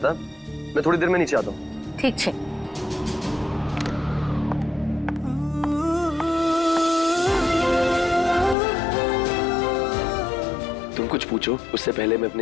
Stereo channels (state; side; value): drops out; right; at 8.6 s